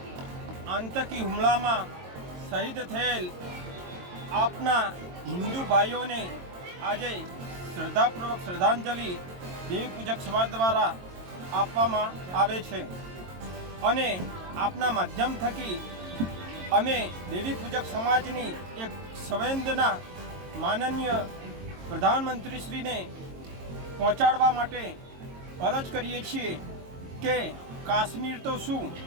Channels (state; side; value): late; left; 22 ms